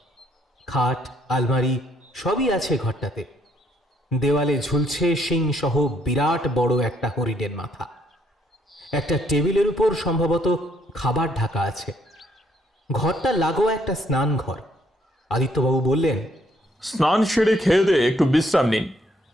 খাট আলমারি সবই আছে ঘরটাতে। দেওয়ালে ঝুলছে শিং সহ বিরাট বড় একটা হরিণের মাথা। একটা টেবিলের উপর সম্ভবত খাবার ঢাকা আছে। ঘরটা লাগোয়া একটা স্নান ঘর। আদিত্যবাবু বললেন, স্নান সেরে খেয়ে দিয়ে একটু বিশ্রাম নিন,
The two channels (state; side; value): normal; both; correlation 0.69